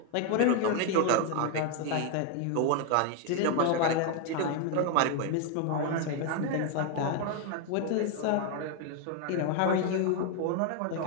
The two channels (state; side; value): different; both; correlation 0.01